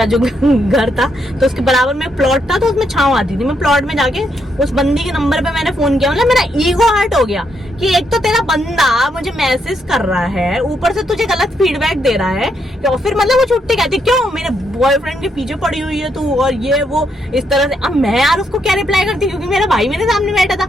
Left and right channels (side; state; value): both; normal; correlation 0.77